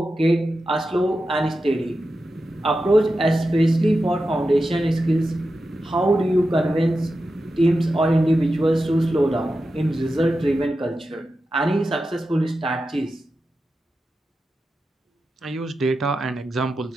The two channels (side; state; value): both; normal; correlation 0.91